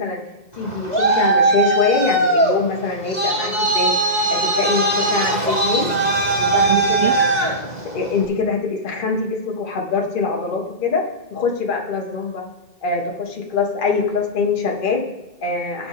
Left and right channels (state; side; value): late; right; 2.0 ms